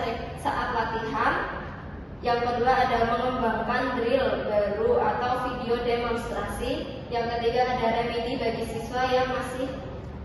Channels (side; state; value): both; identical; correlation 1.00